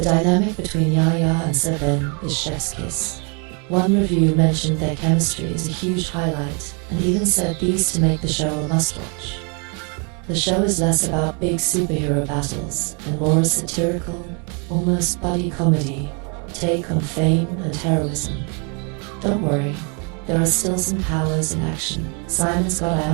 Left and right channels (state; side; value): quieter; left; 35.9 dB